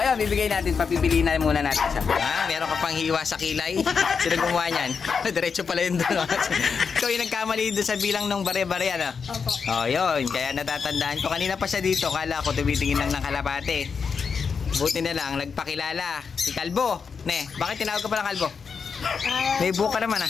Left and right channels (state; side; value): quieter; right; 5.8 dB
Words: bibigay natin, papipili na muna natin siya. Meron ka pang hiwa sa kilay. Sino gumawa niyan? Diretso pala yun doon. Ikaw yung nagkamali doon sa bilang ng bare-bare Opo. Yun, kaya natatandaan ko. Kanina pa siya dito, kala ko tumitingin lang ng kalapate. Buti na lang, nagpakilala. Si Kalbo. Bakit tinawag ka pala Kalbo? May buka naman